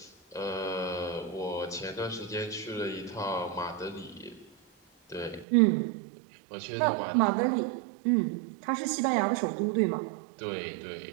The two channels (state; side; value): drops out; left; at 5.5 s